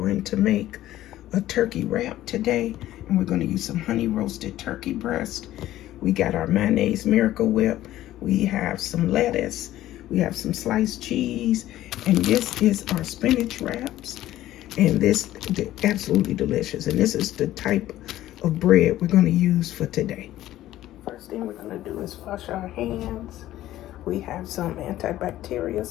to make a turkey wrap today and we're going to use some honey roasted turkey breast. We got our mayonnaise Miracle Whip. We have some lettuce. We have some sliced cheese. And this is our spinach wraps. And this is absolutely delicious. And this is the type of bread we're going to use for today. First thing we're going to do is wash our hands. We have some antibacterial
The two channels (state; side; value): quieter; right; 14.2 dB